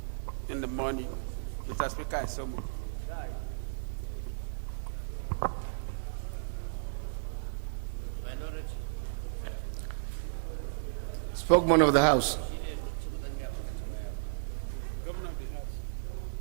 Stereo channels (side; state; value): left; silent; digital silence